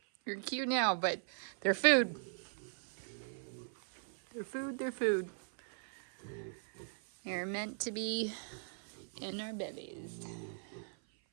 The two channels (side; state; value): left; silent; 52 dB below the other